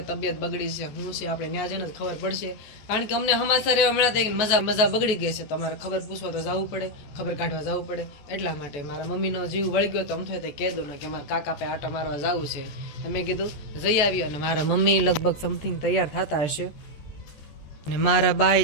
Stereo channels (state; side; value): late; right; 14 ms